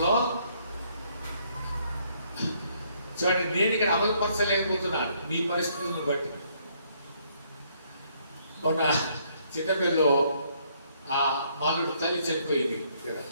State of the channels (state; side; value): inverted; both; correlation -0.68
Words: చూడండి, నేను ఇక్కడ అమలుపరచలేకపోతున్నాను మీ పరిస్థితులను బట్టి. మొన్న చిన్నపిల్లలో ఆ మాలుడు తల్లి చనిపోయింది.